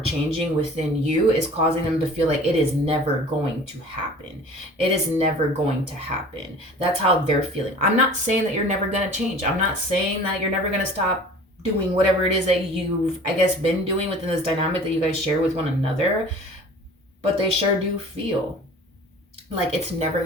within you is causing them to feel like it is never going to happen. It is never going to happen. That's how they're feeling. I'm not saying that you're never going to change. I'm not saying that you're never going to stop doing whatever it is that you've, I guess, been doing within this dynamic that you guys share with one another, but they sure do feel like it's never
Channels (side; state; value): both; normal; correlation 0.44